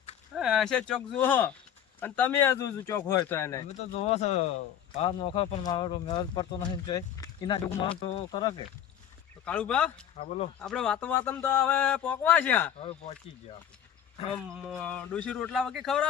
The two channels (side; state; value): right; quieter; 9.7 dB